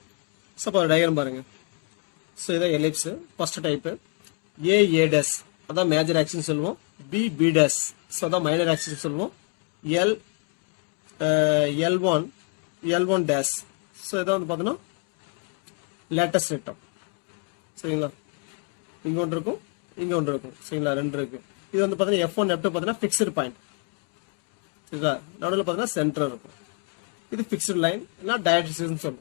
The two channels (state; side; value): quieter; right; 33.6 dB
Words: ஸோ அப்போ டயக்ராம் பாருங்க. ஸோ இதான் ellipse first type. a days அதான் மேஜர் ஆக்சிஸ் சொல்லுவோம். b டேஸ் ஸோ அதான் மைனர் ஆக்சிஸ் சொல்லுவோம். l1 டேஸ் ஸோ இதான் வந்து பார்த்தீங்கன்னா லேட்டஸ்ட் ரெக்டம். சரிங்களா? இங்கே ஒன்று இருக்கும், இங்கே ஒன்று இருக்கும். சரிங்களா? 2 இருக்கு. இது வந்து பார்த்தீங்கன்னா f1 f2 பார்த்தீங்கன்னா ஃபிக்ஸ்டு பாயிண்ட். சரிங்களா? நடுவில் பார்த்தீங்கன்னா சென்டர் இருக்கும். இது ஃபிக்ஸ்டு லைன் இல்லை டயட்ரிஸ்ன்னு